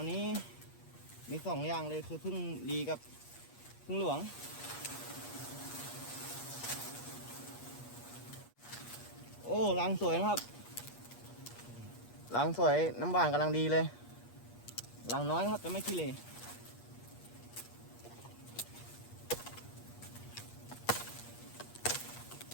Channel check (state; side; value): late; right; 8.4 ms